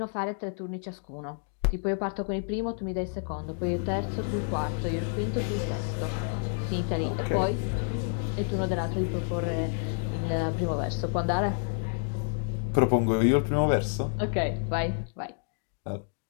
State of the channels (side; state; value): right; silent; 58 dB below the other